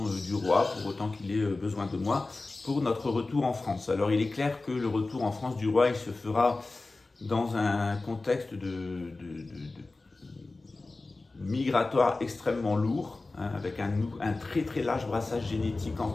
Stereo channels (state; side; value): quieter; right; 3.3 dB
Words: du roi, pour autant qu'il ait besoin de moi, pour notre retour en France. Alors il est clair que le retour en France du roi, il se fera dans un contexte de migratoire extrêmement lourd, hein, avec un très très large brassage génétique en